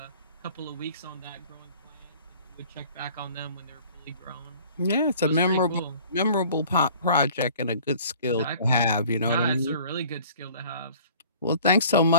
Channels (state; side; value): inverted; both; correlation -0.49